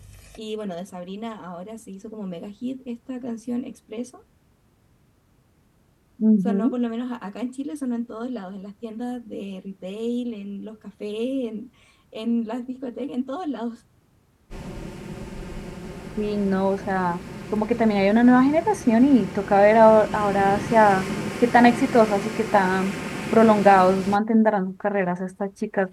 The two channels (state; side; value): identical; both; correlation 1.00